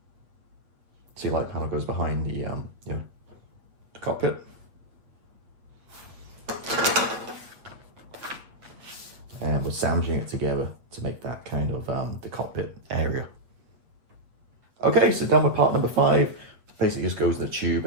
See, light panel goes behind the the cockpit. And we're sandwiching it together to make that kind of the cockpit area. Okay, so done with part number 5. Basically just goes in the tube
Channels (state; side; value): late; left; 8.4 ms